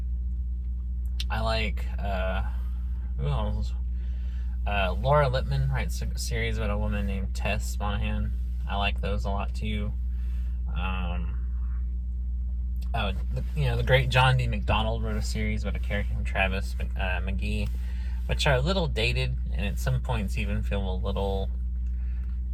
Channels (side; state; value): both; identical; correlation 1.00